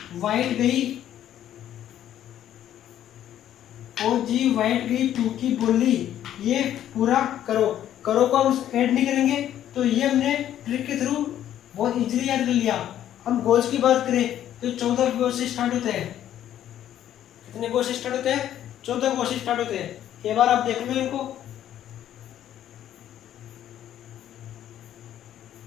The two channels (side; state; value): right; quieter; 11.4 dB